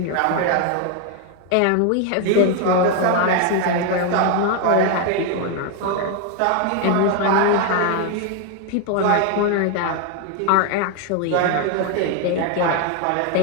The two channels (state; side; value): different; both; correlation 0.01